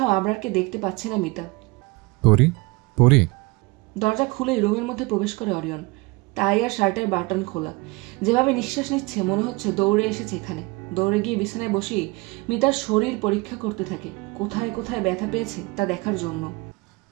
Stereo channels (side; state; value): left; quieter; 25.0 dB